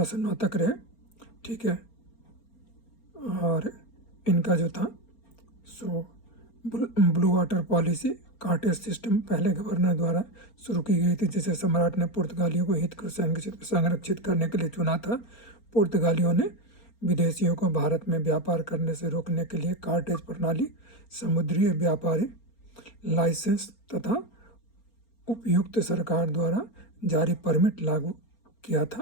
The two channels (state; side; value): late; right; 4.3 ms